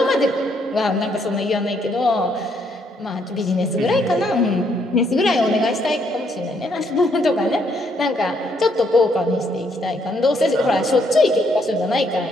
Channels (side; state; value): both; normal; correlation 0.71